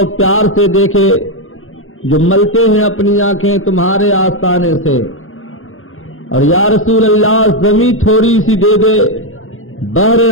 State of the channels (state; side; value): late; right; 0.60 ms